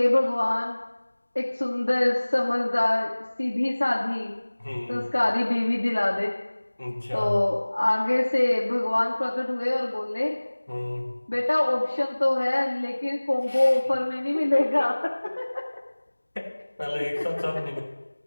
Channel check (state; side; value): inverted; both; correlation -1.00